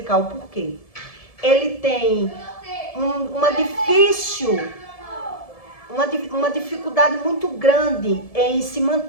o porquê. Ele tem uma dificuldade muito grande em se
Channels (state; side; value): late; right; 1.7 ms